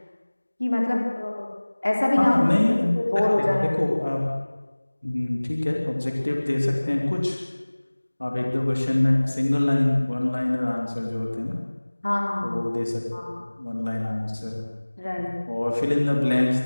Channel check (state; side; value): inverted; both; correlation -1.00